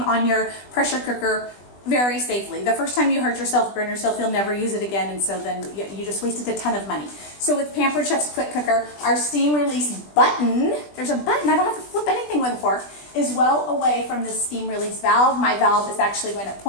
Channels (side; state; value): right; late; 20 ms